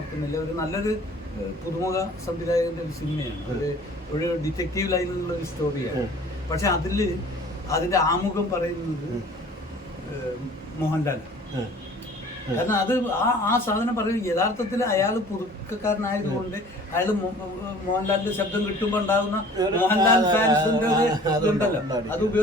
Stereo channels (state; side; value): normal; both; correlation 0.48